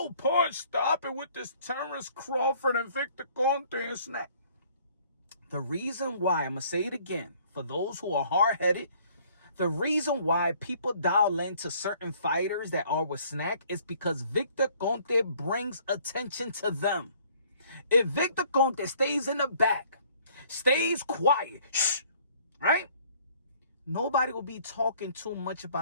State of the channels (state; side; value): inverted; both; correlation -0.58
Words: Punch, stop it with this Terrence Crawford and Victor Conte and snack. The reason why, I'm going to say it again, for those who are hard-headed, the reason why people dial into certain fighters that are with snack is because Victor Conte brings attention to them. If Victor Conte stays in the back, stays quiet, shh, right? Nobody will be talking too much